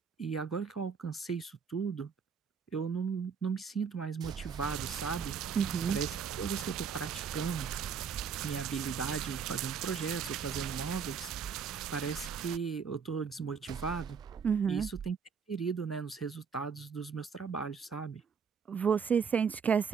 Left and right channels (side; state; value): left; quieter; 6.3 dB